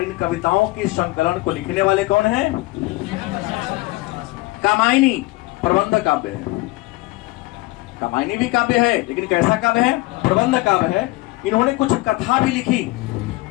इन कविताओं के संकलन को लिखने वाले कौन हैं? कामायनी प्रबंध काव्य है। कामायनी भी काव्य है, लेकिन कैसा काव्य है? प्रबंध काव्य है। इन्होंने कुछ कथा भी लिखी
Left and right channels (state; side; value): quieter; right; 20.7 dB